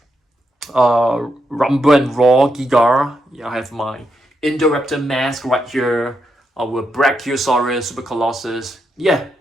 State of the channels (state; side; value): normal; both; correlation 0.82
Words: Rumble and Raw Giga. Yeah, I have my Indoraptor mask right here. Our Brachiosaurus, Super Colossus. Yeah,